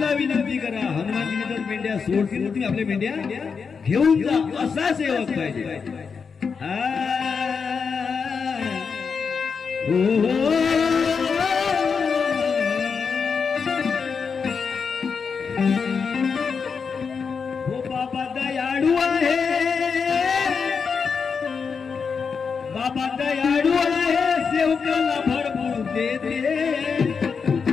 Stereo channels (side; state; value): right; quieter; 5.7 dB